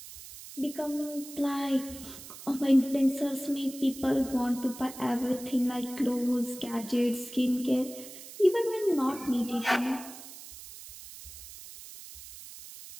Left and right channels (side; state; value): right; noise; hiss, 15 dB below the sound